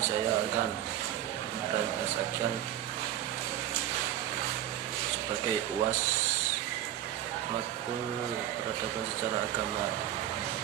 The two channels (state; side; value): quieter; left; 12.2 dB